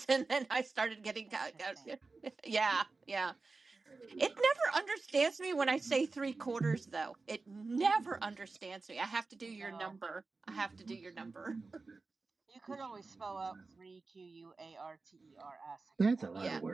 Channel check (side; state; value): left; quieter; 3.9 dB